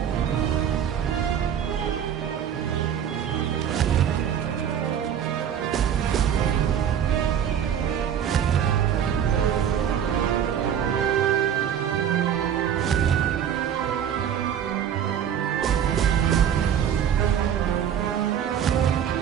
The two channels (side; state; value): left; quieter; 9.0 dB